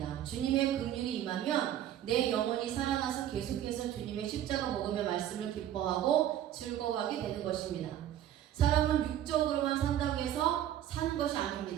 주님의 긍휼이 임하면 내 영혼이 살아나서 계속해서 주님의 십자가 복음의 말씀을 기뻐하고 즐거워하게 되는 것입니다. 사람은 육적으로만 산다고 해서 사는 것이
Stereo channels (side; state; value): left; quieter; 11.6 dB